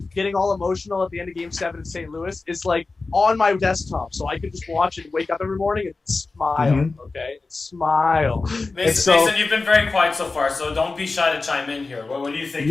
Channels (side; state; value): right; quieter; 3.8 dB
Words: getting all emotional at the end of Game 7 in St. Louis is like on my desktop, so I could just watch it, wake up every morning, and smile. Okay, and smile. Mason, you've been very quiet so far, so don't be shy to chime in here. What do you think?